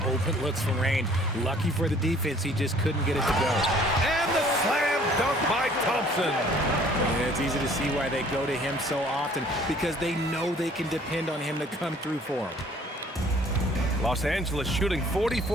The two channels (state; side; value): normal; both; correlation 0.56